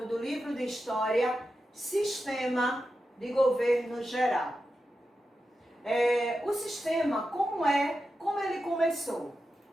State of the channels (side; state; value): both; normal; correlation 0.90